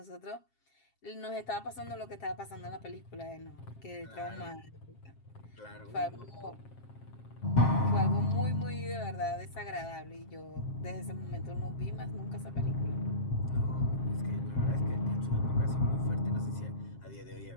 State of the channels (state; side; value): late; right; 7.5 ms